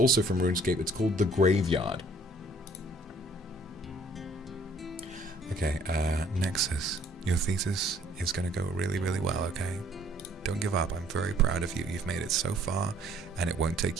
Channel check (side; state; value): both; normal; correlation 0.59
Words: from RuneScape. It's called The Graveyard. Okay, Nexus, your thesis is gonna go really, really well, okay? Don't give up. I'm very proud of you. You've made it so far, and it won't